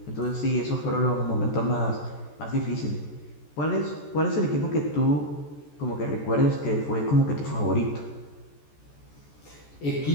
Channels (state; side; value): late; right; 14 ms